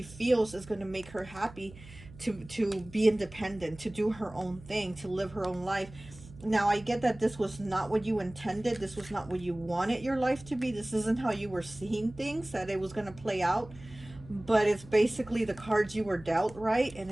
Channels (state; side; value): noise; right; hum, 19 dB below the sound